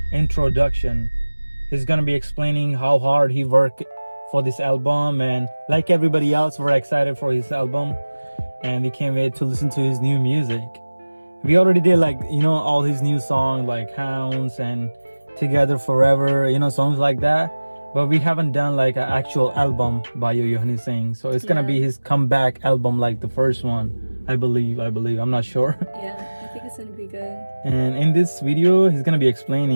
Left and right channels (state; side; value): inverted; both; correlation -1.00